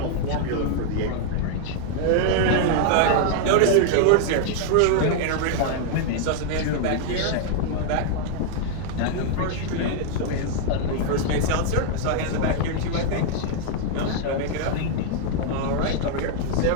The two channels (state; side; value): different; both; correlation 0.00